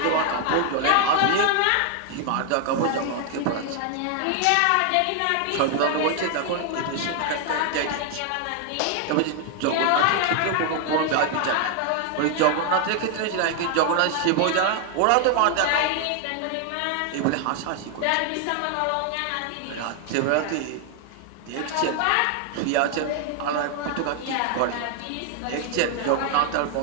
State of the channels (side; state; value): both; different; correlation 0.00